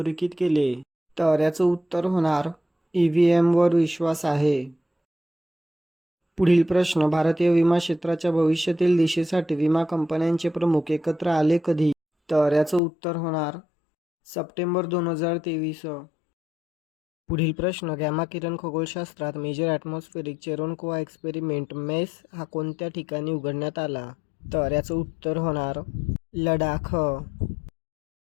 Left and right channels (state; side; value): drops out; right; at 12.8 s